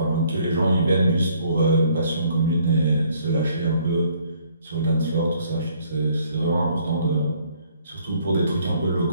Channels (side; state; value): both; inverted; correlation -0.63